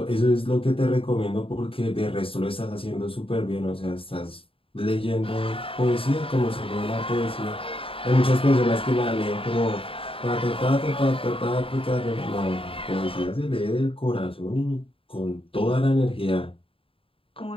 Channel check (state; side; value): late; right; 0.27 ms